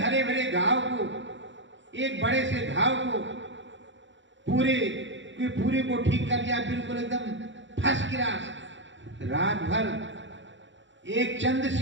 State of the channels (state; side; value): late; left; 0.54 ms